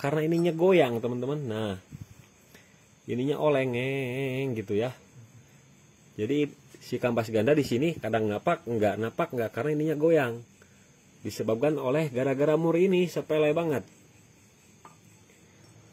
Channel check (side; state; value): both; identical; correlation 1.00